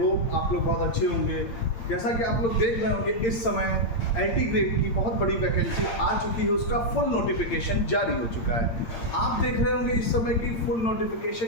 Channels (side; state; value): right; late; 8.7 ms